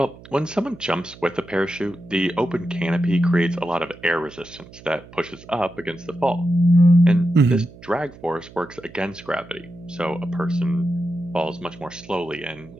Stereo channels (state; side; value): noise; right; hum, 20 dB below the sound